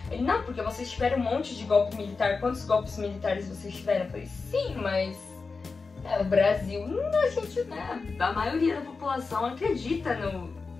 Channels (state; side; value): quieter; right; 4.4 dB